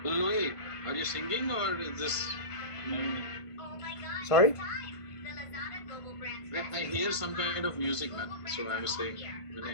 Louis, are you singing or is this? Sorry? I hear some kind of music, man. So I was saying.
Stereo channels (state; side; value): late; right; 1.5 ms